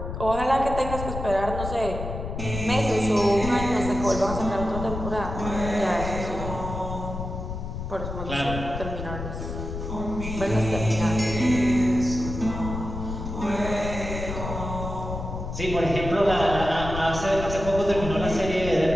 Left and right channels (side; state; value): left; noise; rumble, 6 dB below the sound